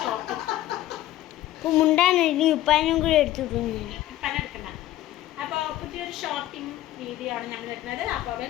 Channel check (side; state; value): right; quieter; 14.5 dB